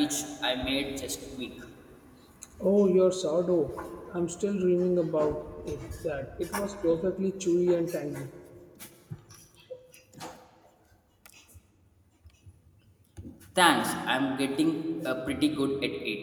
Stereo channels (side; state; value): both; identical; correlation 1.00